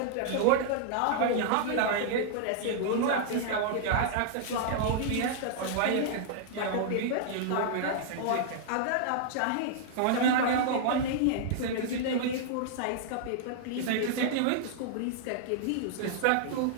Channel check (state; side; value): different; both; correlation -0.01